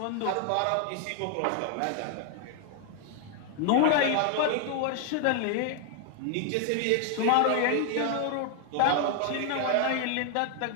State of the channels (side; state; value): both; different; correlation 0.00